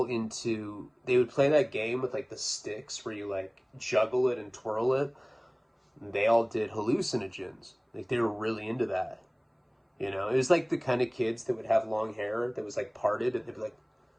into, they would play that game with, like, the sticks where you, like, juggle it and twirl it. And they all did hallucinogens. Like, they were really into that. You know, it was like the kind of kids that would have long hair that was, like, parted, and they'd be like,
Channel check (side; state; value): both; identical; correlation 1.00